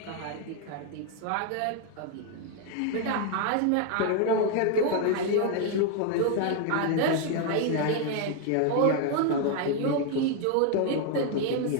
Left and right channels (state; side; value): different; both; correlation 0.00